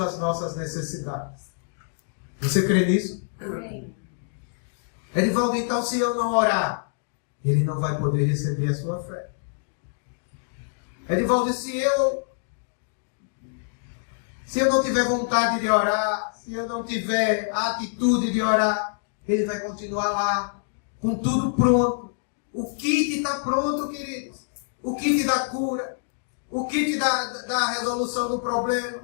as nossas necessidades. Você crê nisso? Amém. Edivaldo, então se eu não orar, ele não vai poder receber a sua fé. Edivaldo, se eu não tiver vontade de orar, se eu não tiver a atitude de orar, ele vai continuar lá, com tudo pronto. O kit está pronto, queridos. O kit da cura, o kit da resolução do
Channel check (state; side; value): silent; right; digital silence